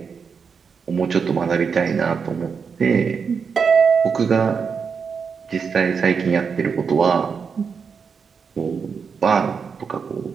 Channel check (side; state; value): left; quieter; 5.9 dB